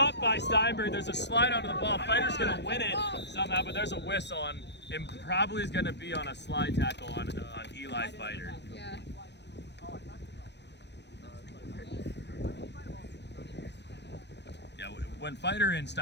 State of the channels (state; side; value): late; right; 0.50 ms